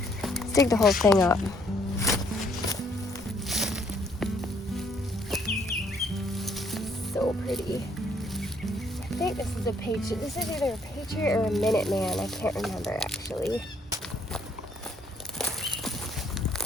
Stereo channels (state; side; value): normal; both; correlation 0.67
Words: Let's dig the whole thing up. So pretty. I think this is a patriot. This is either a patriot or a Minuteman. I can't remember actually.